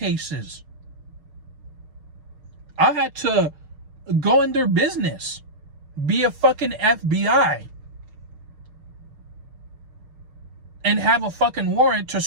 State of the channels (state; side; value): late; left; 6.5 ms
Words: I had to go in their business, be a fucking FBI, and have a fucking warrant to